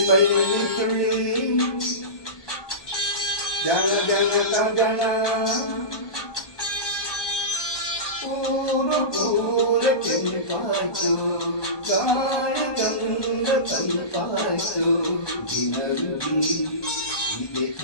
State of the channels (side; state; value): right; late; 1.2 ms